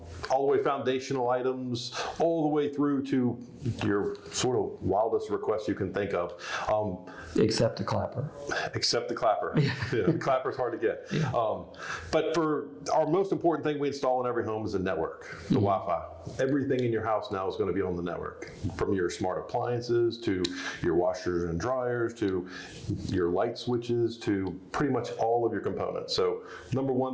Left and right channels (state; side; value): identical; both; correlation 1.00